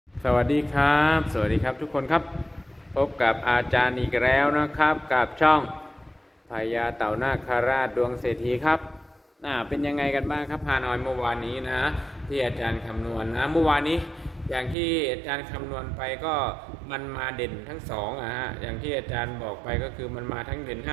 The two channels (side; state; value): left; drops out; at 14.8 s